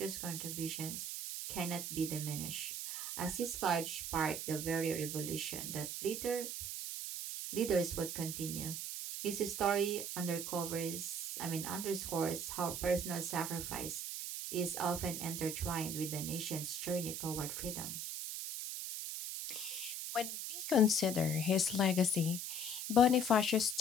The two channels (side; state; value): right; noise; hiss, 4 dB below the sound